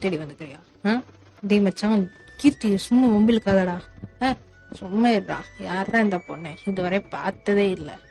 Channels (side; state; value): both; identical; correlation 1.00